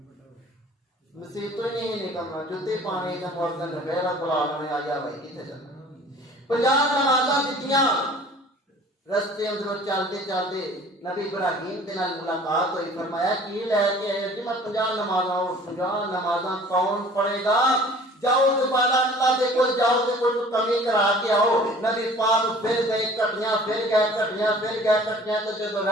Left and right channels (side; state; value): both; normal; correlation 0.49